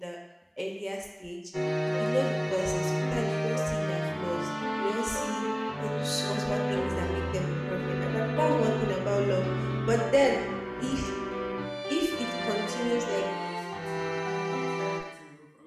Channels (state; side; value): identical; both; correlation 1.00